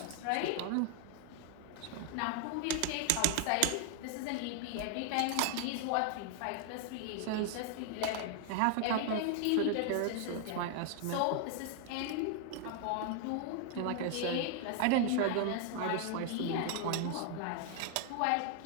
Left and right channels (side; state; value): both; different; correlation 0.00